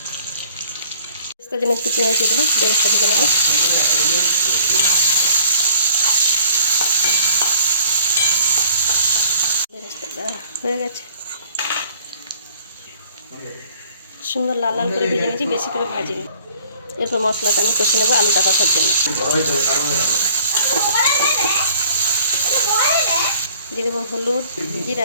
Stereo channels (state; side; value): inverted; both; correlation -0.53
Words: তার জন্য একটু পেঁয়াজ দিয়ে দেবো, বেরেস্তা ভেজে নেব। বেরেস্তাটা হয়ে গেছে, সুন্দর লাল লাল করে ভেজে নিয়েছি, বেশি করে ভাজিনি। এরপর মশলাটা আমি কষে নেবো আলুটা কষার জন্য। দিয়ে দেবো হলুদ,